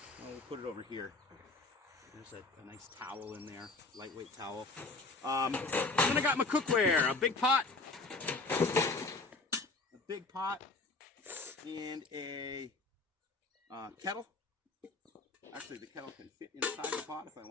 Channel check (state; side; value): quieter; right; 3.5 dB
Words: We'll put it over here. There's a nice towel in there, lightweight towel. Then I got my cookware, a big pot, and a kettle. Actually, the kettle can fit inside the pot if I